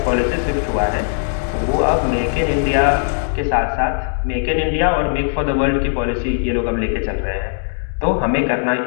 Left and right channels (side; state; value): right; silent; digital silence